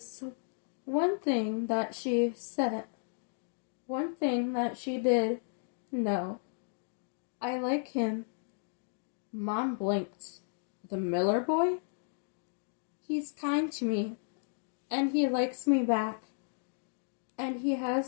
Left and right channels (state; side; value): silent; right; digital silence